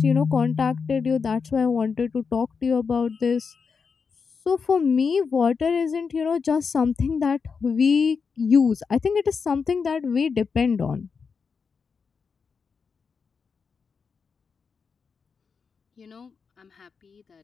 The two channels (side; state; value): right; quieter; 5.5 dB